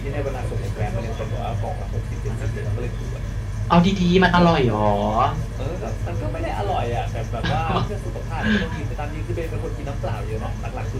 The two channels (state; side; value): identical; both; correlation 1.00